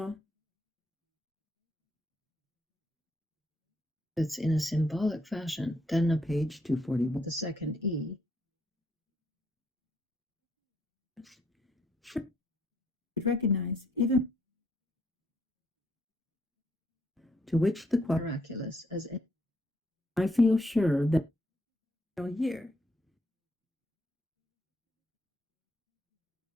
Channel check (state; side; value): normal; both; correlation 0.72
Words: it's in a symbolic fashion. Then a Page 241. the second E recognize even To which the miraculous as in I feel sure that here